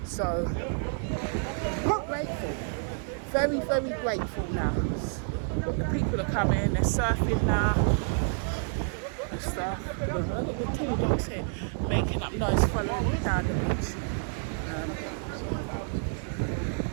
So I'm grateful, very, very grateful now. The people are coming, they're surfing now and stuff. I've got the two dogs here making up noise, following me down the beach.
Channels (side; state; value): left; silent; 59 dB below the other